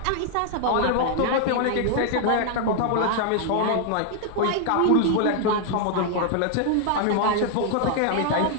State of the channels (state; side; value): different; both; correlation 0.00